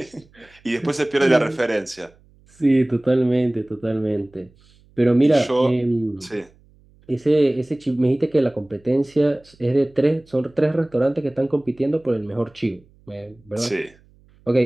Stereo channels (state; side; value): noise; right; hum, 30 dB below the sound